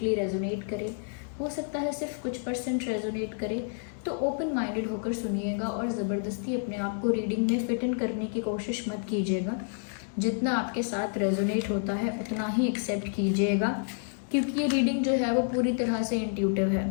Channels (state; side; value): silent; right; digital silence